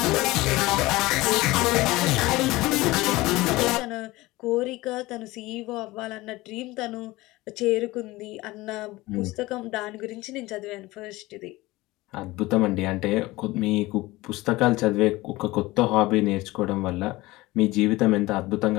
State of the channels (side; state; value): right; quieter; 19.8 dB